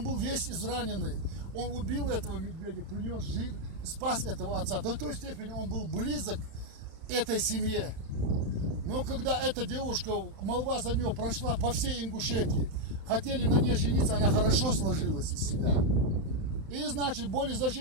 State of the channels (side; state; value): left; late; 31 ms